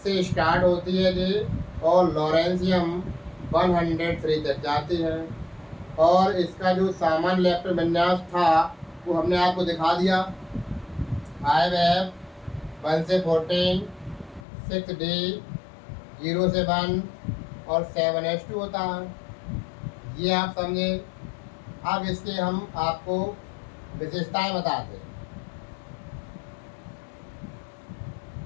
से स्टार्ट होती है जी और लॉरेंशियम 103 तक जाती है। और इसका जो सामान्य इलेक्ट्रॉन विन्यास था वो हमने आपको दिखा दिया, 5F 1 से 14, 6D 0 से 1 और 7H2 होता है। ये आप समझे। अब इसके हम आपको विशेषताएं बताते हैं।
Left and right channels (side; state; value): right; drops out; at 14.5 s